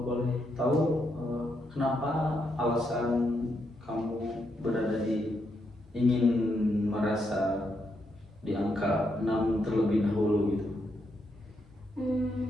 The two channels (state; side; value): normal; both; correlation 0.80